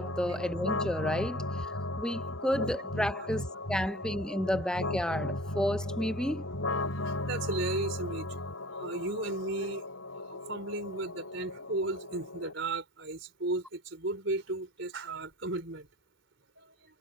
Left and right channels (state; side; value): normal; both; correlation 0.45